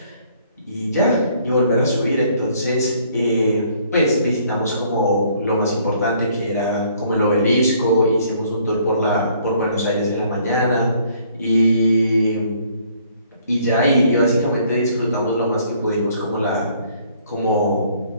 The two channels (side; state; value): both; inverted; correlation -0.62